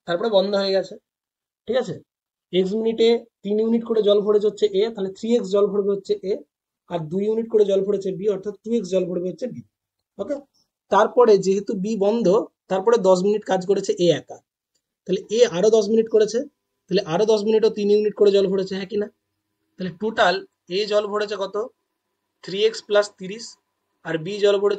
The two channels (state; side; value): identical; both; correlation 1.00